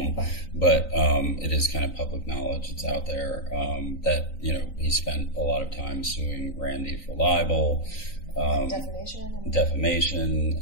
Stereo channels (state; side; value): late; right; 3.9 ms